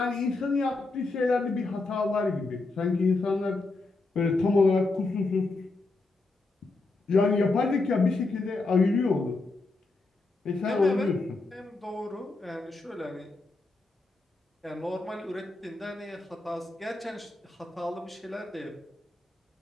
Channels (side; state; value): right; quieter; 3.4 dB